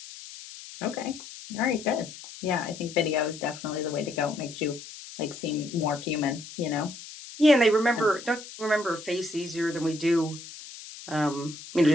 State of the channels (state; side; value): noise; left; hiss, 14 dB below the sound